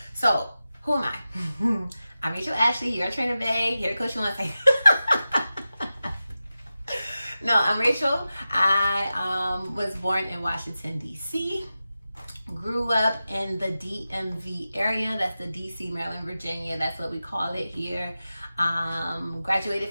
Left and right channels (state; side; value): inverted; both; correlation -0.94